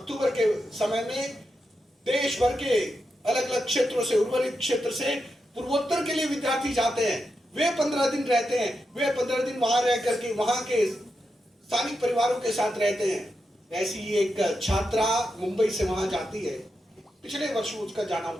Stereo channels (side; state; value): both; normal; correlation 0.87